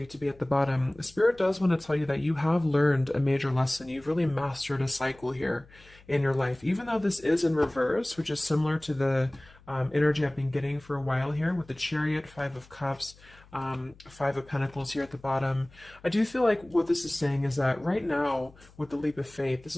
to be at the bottom, the Spirit does want to tell you that you have learned a major lesson. You've really mastered a cycle here in your life. Even though this is in reverse, which is similar to the energy I've been getting for a while here with the Chariot, Five of Cups, Five of Pentacles here at the bottom. I do feel like what this is saying is that right now with the Leap of Faith, this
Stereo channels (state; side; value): noise; left; hum, 25 dB below the sound